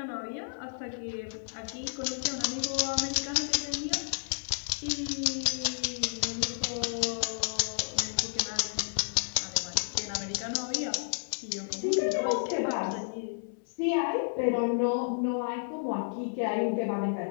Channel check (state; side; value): silent; right; 57 dB below the other